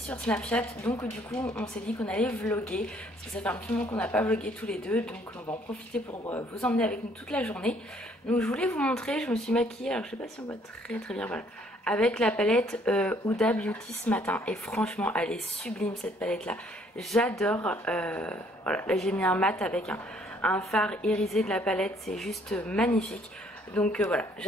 Snapchat, donc du coup on s'est dit qu'on allait vlogger parce que ça fait un petit moment qu'on n'a pas vlogué tous les deux, donc on va en profiter pour vous emmener avec nous toute la journée. Donc je voulais vous montrer, je me suis maquillée, alors je sais pas si on voit très bien, voilà, avec la palette Huda Beauty ce matin, et franchement elle est sublime cette palette là, j'adore. Voilà, là j'ai mis un mat avec un fard irisé de la palette, c'est juste magnifique. Donc voilà,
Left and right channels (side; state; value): both; normal; correlation 0.63